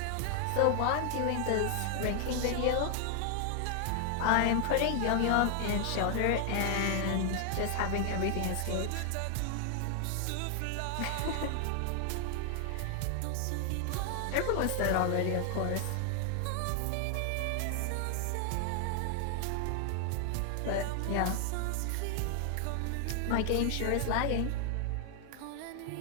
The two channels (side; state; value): both; different; correlation 0.00